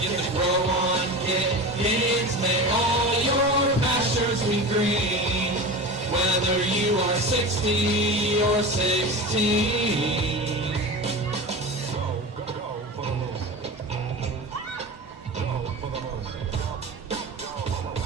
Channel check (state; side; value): normal; both; correlation 0.29